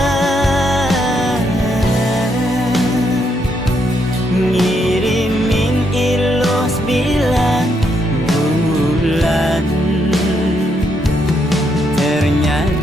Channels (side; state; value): both; normal; correlation 0.77